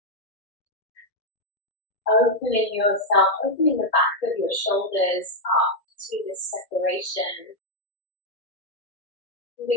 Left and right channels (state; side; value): late; right; 1.7 ms